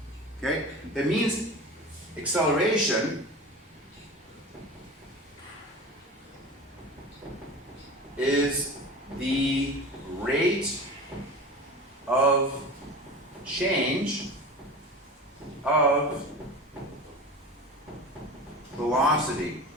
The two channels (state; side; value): normal; both; correlation 0.33